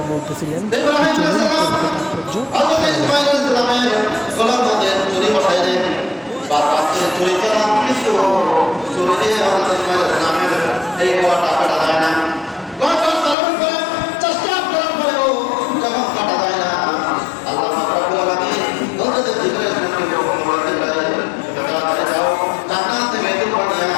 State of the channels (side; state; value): right; drops out; at 13.4 s